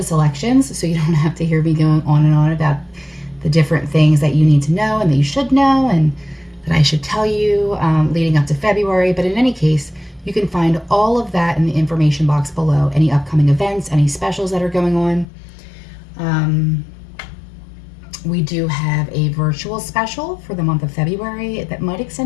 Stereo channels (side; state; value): right; drops out; at 15.2 s